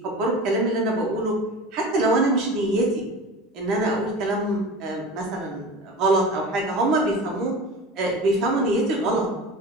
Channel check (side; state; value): both; normal; correlation 0.33